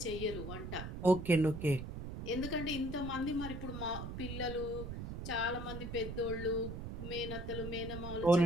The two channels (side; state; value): right; noise; rumble, 7 dB below the sound